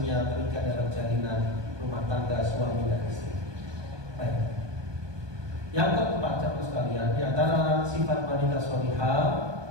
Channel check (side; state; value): left; late; 1.2 ms